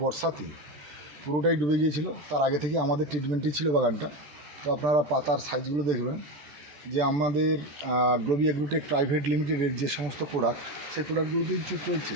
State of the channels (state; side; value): late; left; 14 ms